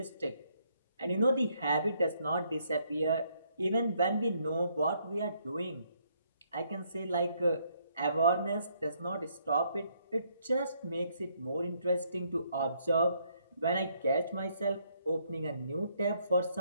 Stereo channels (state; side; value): inverted; both; correlation -0.71